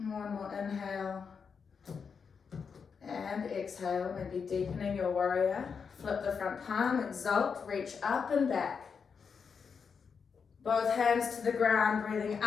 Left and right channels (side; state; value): right; quieter; 6.0 dB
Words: more inhale and exhale, maybe deepening your warrior. Flip the front palm, exalt, reach up and back. Both hands to the ground, breathing